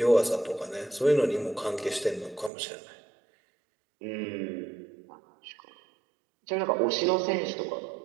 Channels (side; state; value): left; drops out; at 2.5 s